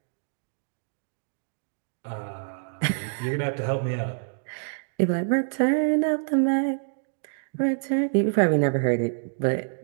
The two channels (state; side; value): silent; left; digital silence